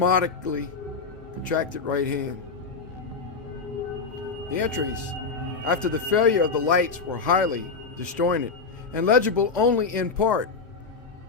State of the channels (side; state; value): right; quieter; 4.8 dB